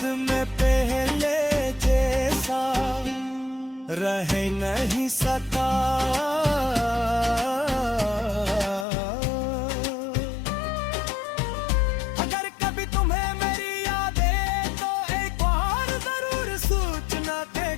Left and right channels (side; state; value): right; drops out; at 8.8 s